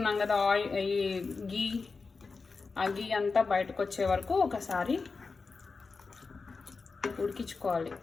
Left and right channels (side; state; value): right; quieter; 4.4 dB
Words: కదా ఈ గీ, ఆ గీ అంతా బయటకు వచ్చే వరకు ఒకసారి ఉడికించుకోవాలి.